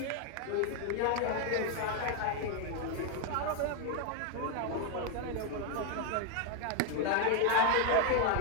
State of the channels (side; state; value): both; different; correlation 0.00